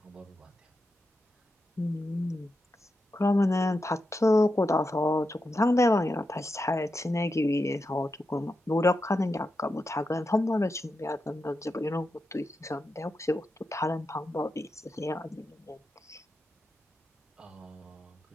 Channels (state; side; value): normal; both; correlation 0.88